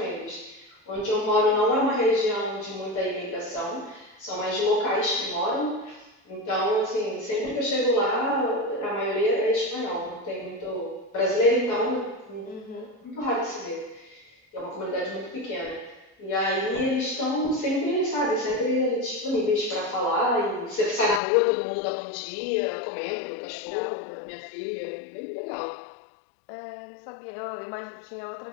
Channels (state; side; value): drops out; right; at 21.2 s